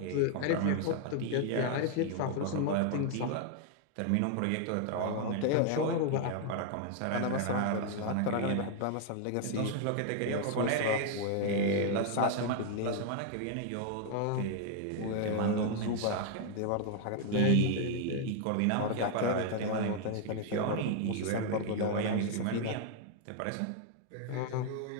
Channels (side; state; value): both; different; correlation 0.00